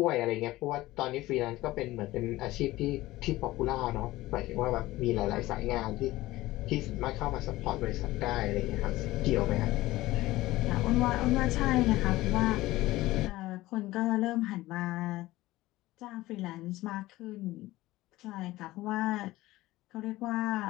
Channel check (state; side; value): quieter; right; 17.7 dB